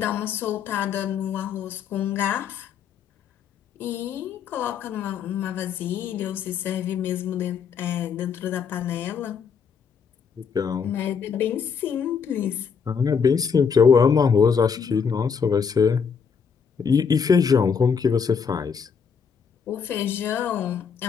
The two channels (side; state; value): right; quieter; 6.4 dB